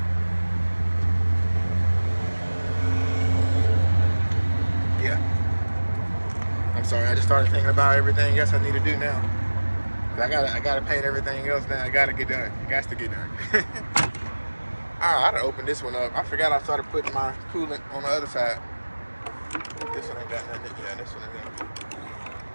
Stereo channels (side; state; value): both; inverted; correlation -1.00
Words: yeah. I'm sorry, I just started thinking about everything else I need to do now. I gotta paint everything else now. I gotta get done. It has to get done. I gotta open this one up. I forgot I started putting my coolant on the other side. This one ain't got nothing. Yeah, this one